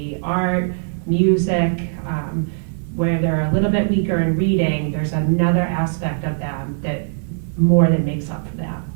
art, music. Where they're a little bit weaker in reading, there's another aspect of them that more than makes up for that.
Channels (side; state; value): left; silent; digital silence